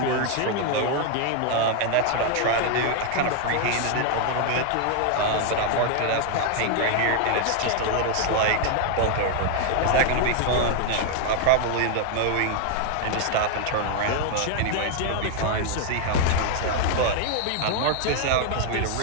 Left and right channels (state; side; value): different; both; correlation 0.00